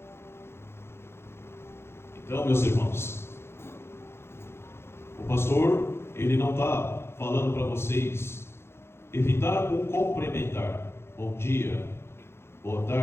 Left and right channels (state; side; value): late; right; 0.12 ms